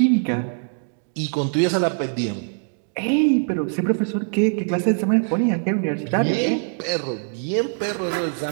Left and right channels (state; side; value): silent; left; 62 dB below the other